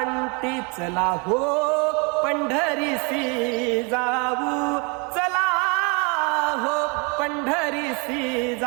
चला हो पंढरीसी जाऊ, चला हो पंढरीसी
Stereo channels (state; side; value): quieter; left; 32.4 dB